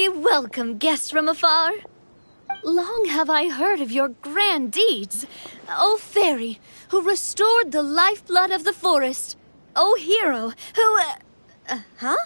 welcome, guests from afar. Long have I heard of your grand deeds. O fairy, who restored the lifeblood of the forest. O hero, who... huh?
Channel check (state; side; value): inverted; both; correlation -1.00